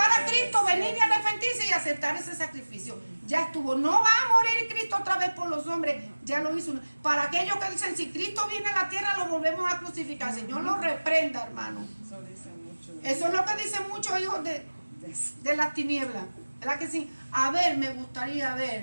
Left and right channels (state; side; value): inverted; both; correlation -1.00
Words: a Cristo, venir y arrepentirse y aceptar ese sacrificio. Ya estuvo. No va a morir Cristo otra vez por los hombres. Ya lo hizo. Para aquellos que dicen, si Cristo viene a la tierra, lo volvemos a crucificar. Señor lo reprenda, hermano. Eso es lo que dicen muchos hijos de las tinieblas. ¿Verdad que sí? A ver, me gustaría